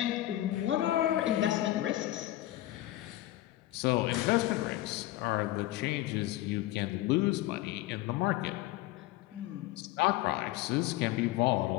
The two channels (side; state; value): right; quieter; 15.6 dB